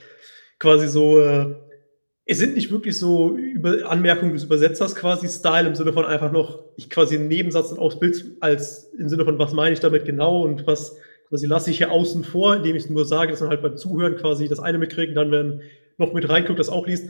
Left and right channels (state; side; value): inverted; both; correlation -1.00